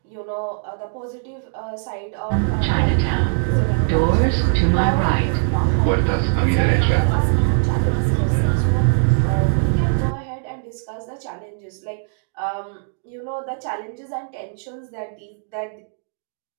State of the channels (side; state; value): left; silent; digital silence